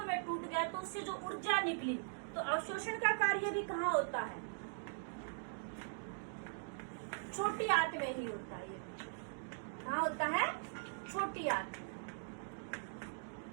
में टूट गया तो उससे जो ऊर्जा निकली, तो अवशोषण का कार्य भी कहाँ होता है? छोटी आंत में ही होता है। कहाँ होता है? छोटी आंत।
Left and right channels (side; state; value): left; silent; digital silence